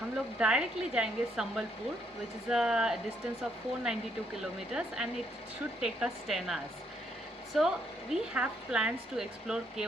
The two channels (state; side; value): normal; both; correlation 0.71